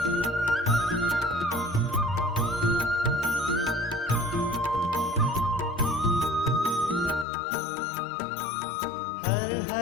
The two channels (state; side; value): drops out; right; at 7.2 s